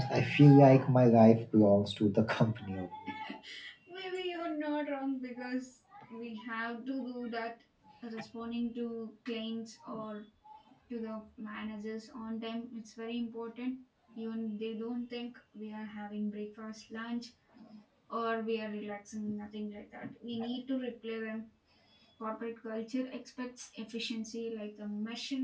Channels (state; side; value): identical; both; correlation 1.00